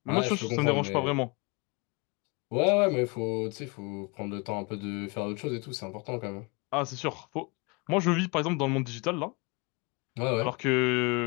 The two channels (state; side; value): quieter; right; 29.6 dB